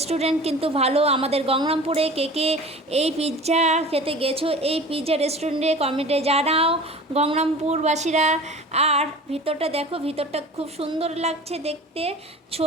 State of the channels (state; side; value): normal; both; correlation 0.39